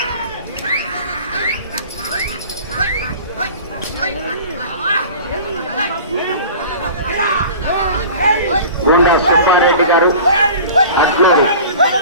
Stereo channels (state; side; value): inverted; both; correlation -0.40